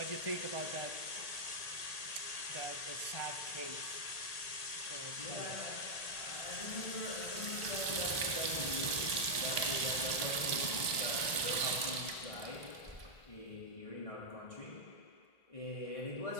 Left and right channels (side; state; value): right; late; 1.8 ms